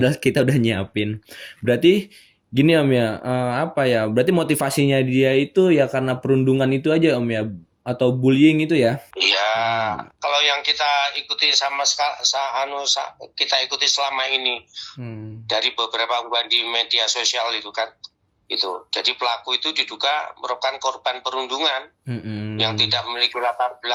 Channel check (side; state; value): both; identical; correlation 1.00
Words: kita udah nyiapin. Berarti gini Om ya, apa ya? Berarti motivasinya dia itu ya karena perundungan itu aja Om ya, atau bullying itu ya? Iya, kalau yang kita ikuti kita ikuti selama ini dari beberapa unggahan di media sosial itu kan, itu. Jadi pelaku itu diduga merupakan korban perundungan yang tidak memiliki latar